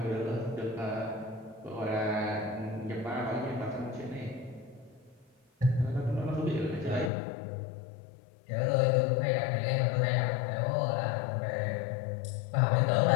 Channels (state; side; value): drops out; right; at 7.1 s